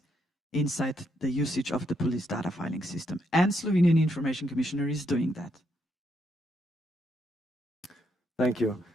inside the usage of the police data filing system. And Slovenian information commissioner is doing that. Thank you.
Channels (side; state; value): both; normal; correlation 0.77